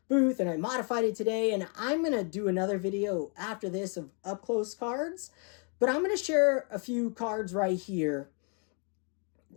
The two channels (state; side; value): quieter; right; 40.0 dB